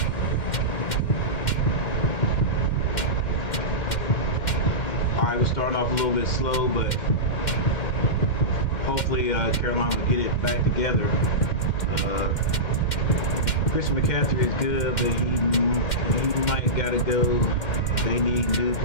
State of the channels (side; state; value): right; late; 2.1 ms